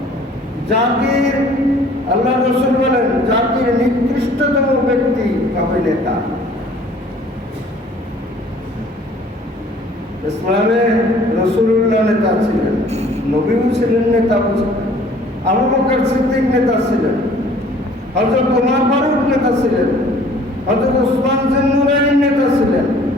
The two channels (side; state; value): both; normal; correlation 0.54